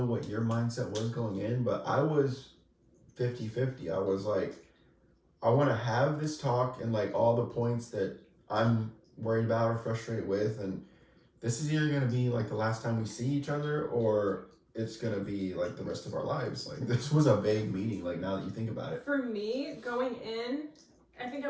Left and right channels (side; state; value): both; identical; correlation 1.00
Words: what your mindset was going in, but I was 50-50. I was like, I want to have this talk and like all the points that I'm worried about or frustrated with, and this is either going to be like the last time we see each other or it's going to be like the rest of our lives. Like, this was a vague meeting, like, now that you think about it. For me, going in, I think I